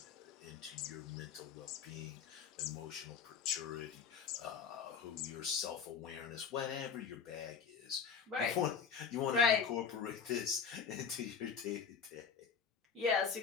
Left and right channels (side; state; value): right; quieter; 6.5 dB